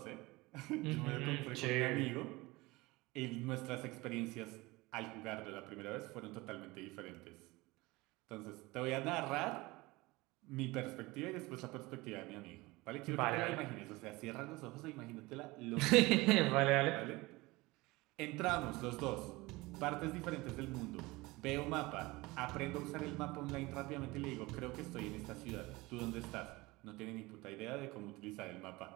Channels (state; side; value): quieter; left; 21.8 dB